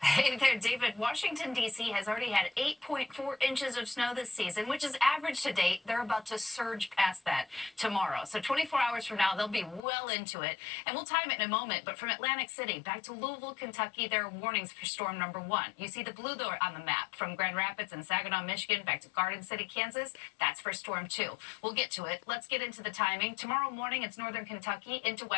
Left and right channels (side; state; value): right; drops out; at 9.8 s